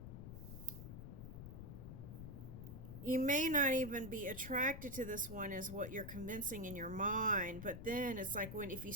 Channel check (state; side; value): noise; left; rumble, 9 dB below the sound